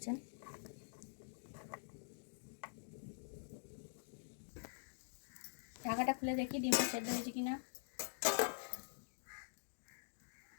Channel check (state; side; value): silent; right; digital silence